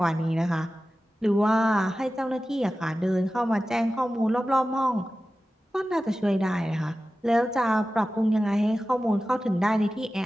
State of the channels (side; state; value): both; normal; correlation 0.95